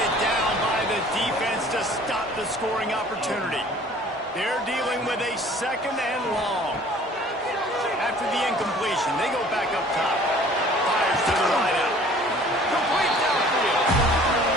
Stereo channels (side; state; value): both; normal; correlation 0.51